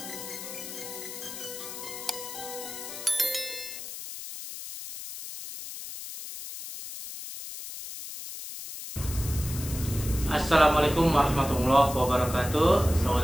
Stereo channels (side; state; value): left; noise; hiss, 10 dB below the sound